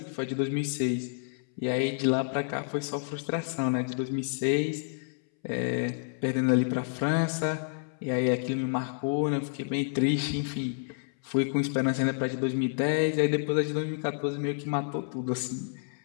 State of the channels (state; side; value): silent; right; 58 dB below the other